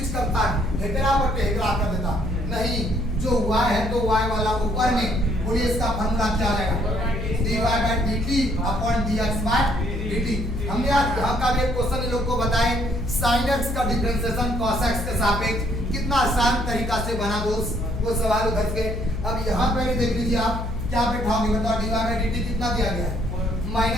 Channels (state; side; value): noise; left; hum, 5 dB below the sound